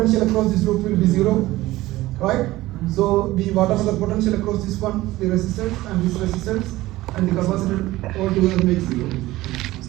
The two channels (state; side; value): quieter; left; 17.4 dB